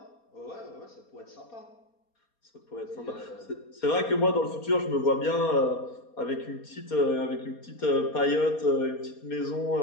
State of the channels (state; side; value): late; right; 4.3 ms